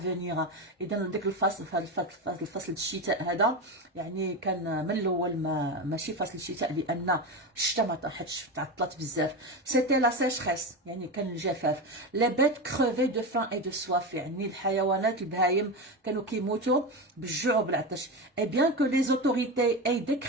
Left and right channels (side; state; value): both; normal; correlation 0.19